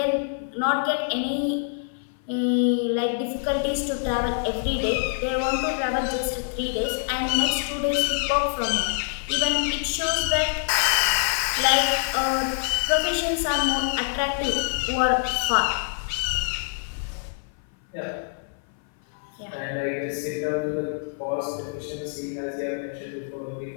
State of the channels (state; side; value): silent; right; 58 dB below the other